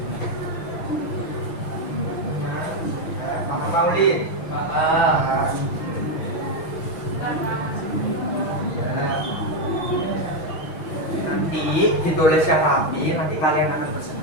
Maulid, paham. Ya. Nanti ditulis yang rapi, nanti kalian akan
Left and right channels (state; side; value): late; right; 6.2 ms